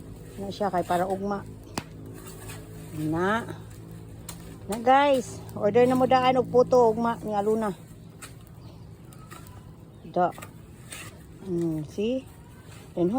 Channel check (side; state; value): both; identical; correlation 1.00